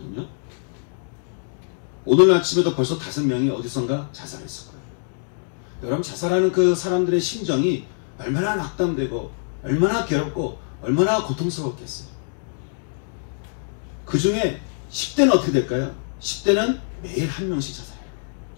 오늘 아침에도 벌써 5명이 어디선가 자살했을 거예요. 여러분, 자살하는 그 사람들의 심정이 얼마나 낙담되고 얼마나 괴롭고 얼마나 고통스럽겠어요. 그 중에 10대는 어떻게 될까요? 10대는 매일 1명씩 자살해요.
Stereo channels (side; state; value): right; silent; 63 dB below the other